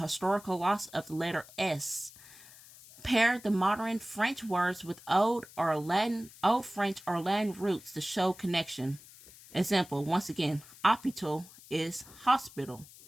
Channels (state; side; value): noise; left; hiss, 20 dB below the sound